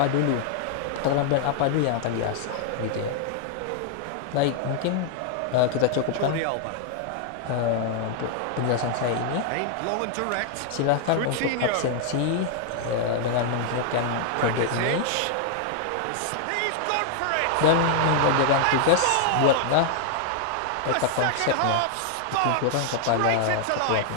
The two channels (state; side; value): different; both; correlation 0.00